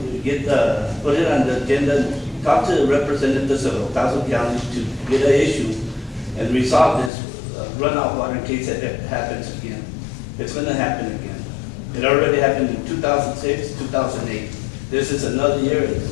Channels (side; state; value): right; drops out; at 7.1 s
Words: put it on the agenda, talk to the representatives of El Paso County to get an issue and resolve this runoff water in case it happens again. It's gonna happen again. It already happened in 2006, 2008. This is another year,